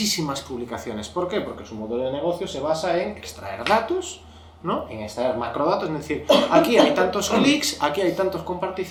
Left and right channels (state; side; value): identical; both; correlation 1.00